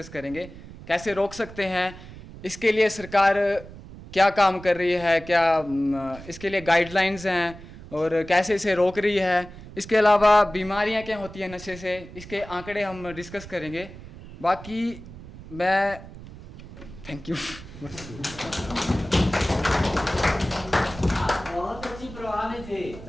करेंगे, कैसे रोक सकते हैं, इसके लिए सरकार क्या काम कर रही है, क्या इसके लिए गाइडलाइंस हैं और कैसे इसे रोक रही है। इसके अलावा बीमारियां क्या होती हैं नशे से, इसके आंकड़े हम डिस्कस करेंगे। बाकी मैं थैंक यू। बहुत अच्छी प्रवाह में थे,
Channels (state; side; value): noise; right; rumble, 16 dB below the sound